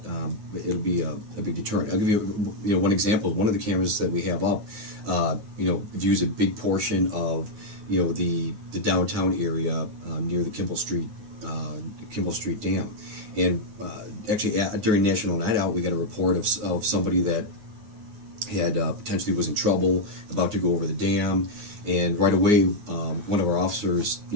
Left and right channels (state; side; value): late; left; 9.4 ms